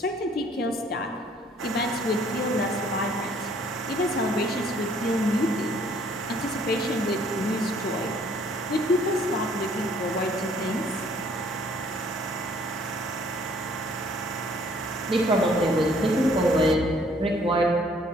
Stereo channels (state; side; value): normal; both; correlation 0.60